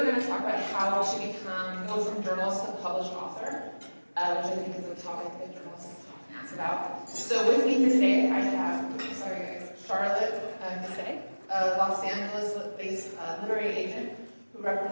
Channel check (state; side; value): inverted; both; correlation -1.00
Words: going to talk about how to go from journalist to published author, which I think is a topic that journalists often ask about. So with me here today, I have, Charlotte Gusay, a Los Angeles-based literary agent who